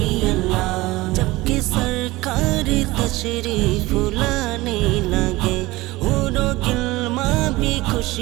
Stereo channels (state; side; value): quieter; left; 19.8 dB